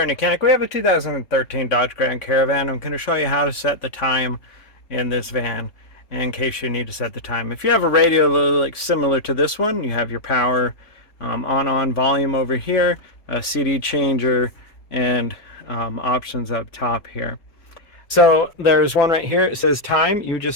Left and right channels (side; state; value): right; late; 3.5 ms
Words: YOUCANIC we have a 2013 Dodge Grand Caravan. I'm going to show you how to set the time in this van in case you need to set the time. If you have a radio like similar to this one, you have your power on volume over here, a CD changer, and options up top here. So there's one right here. It says time. You